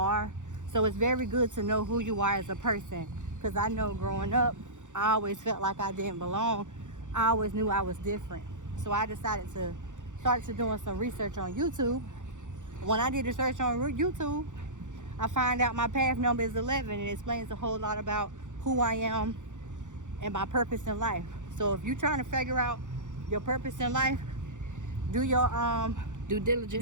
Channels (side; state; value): left; late; 0.86 ms